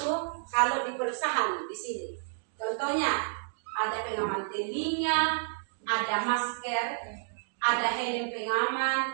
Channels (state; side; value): silent; left; digital silence